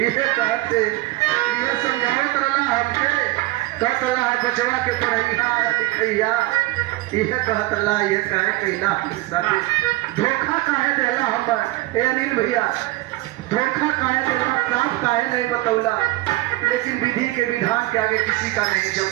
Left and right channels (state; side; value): quieter; left; 19.5 dB